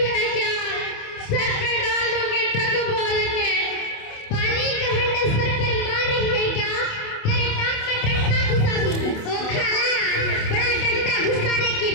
है क्या? सर पे डाल दूंगी टक बोल के। पानी का हंडा सर पर मार रही है क्या? तेरे नाक में डंडा घुसा दूंगी। ओ खाला, बड़ा डंडा घुसाने की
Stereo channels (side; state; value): right; late; 28 ms